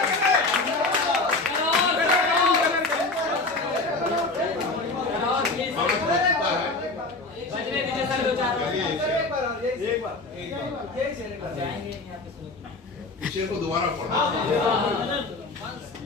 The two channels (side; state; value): right; quieter; 3.4 dB